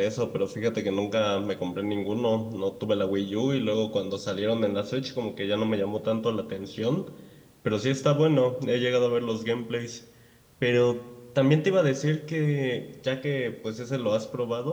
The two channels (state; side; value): identical; both; correlation 1.00